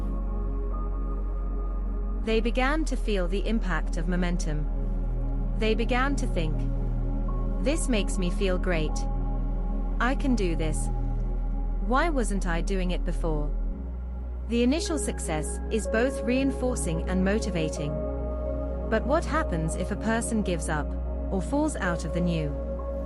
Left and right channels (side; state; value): both; identical; correlation 1.00